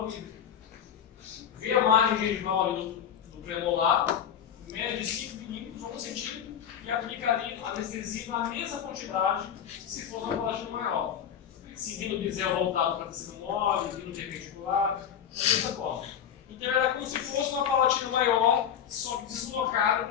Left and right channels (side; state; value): right; quieter; 8.8 dB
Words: livre. Vê a margem gengival ali do premolar, mede 5 milímetros ou 1 centímetro e aplica ali a anestesia na mesma quantidade se for uma palatina maior. Seguindo o bisel voltado para tecido mole, vindo perpendicular, da mesma forma. Então era como se fosse uma palatina maior, só que deslocada